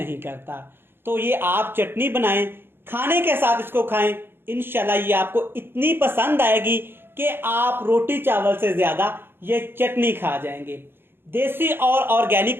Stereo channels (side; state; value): left; late; 0.10 ms